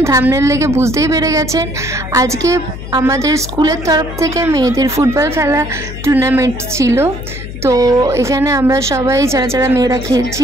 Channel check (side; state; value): left; noise; hum, 10 dB below the sound